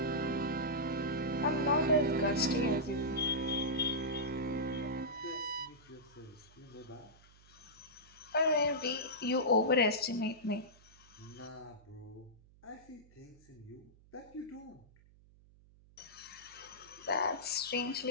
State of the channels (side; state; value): right; noise; hum, 26 dB below the sound